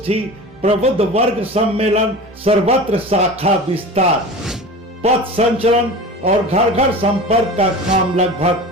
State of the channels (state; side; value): normal; both; correlation 0.34